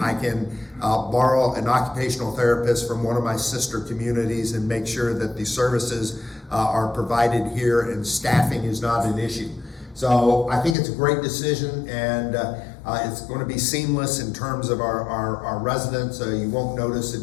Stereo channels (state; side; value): drops out; right; at 10.8 s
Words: I can borrow an occupational therapist from one of my sister communities and make sure that the services are provided here and staffing is not an issue. So I think it's a great decision, and it's going to be seamless in terms of our residents. You won't notice a